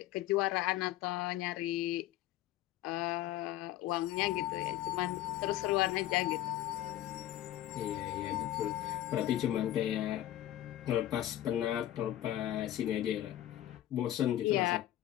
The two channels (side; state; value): right; quieter; 13.3 dB